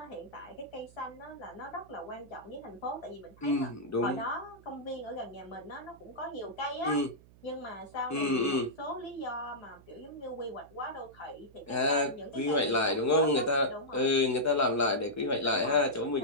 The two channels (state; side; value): noise; right; hum, 24 dB below the sound